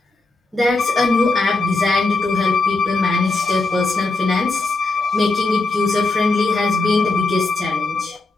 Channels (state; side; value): quieter; right; 3.4 dB